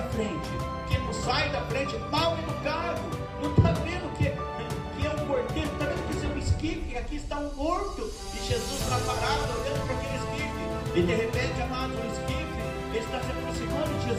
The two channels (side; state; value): both; identical; correlation 1.00